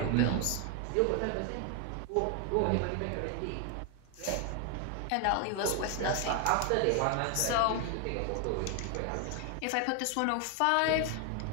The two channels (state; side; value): different; both; correlation 0.00